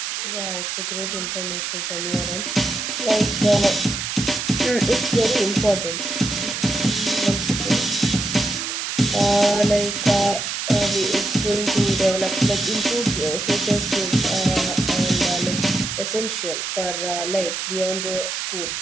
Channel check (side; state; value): right; noise; hiss, 3 dB below the sound